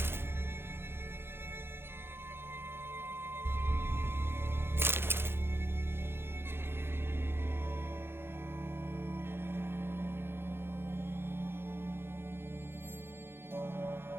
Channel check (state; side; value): late; left; 0.11 ms